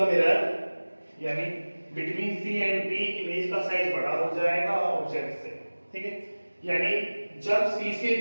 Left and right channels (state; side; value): inverted; both; correlation -1.00